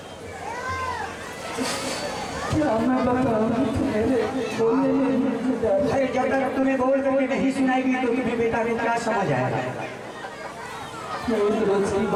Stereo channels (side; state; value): both; identical; correlation 1.00